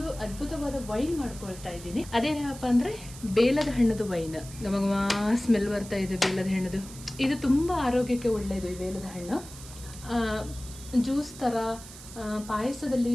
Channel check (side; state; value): right; noise; hiss, 16 dB below the sound